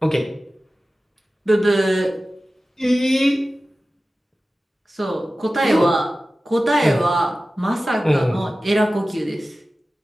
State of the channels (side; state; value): both; normal; correlation 0.95